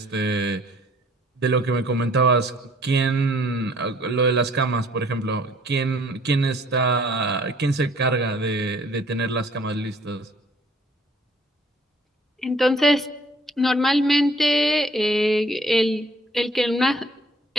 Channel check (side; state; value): both; normal; correlation 0.58